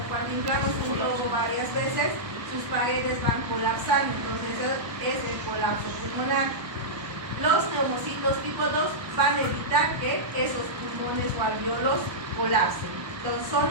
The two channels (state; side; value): late; left; 1.2 ms